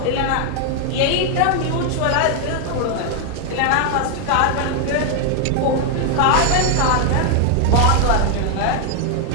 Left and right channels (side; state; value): both; different; correlation 0.00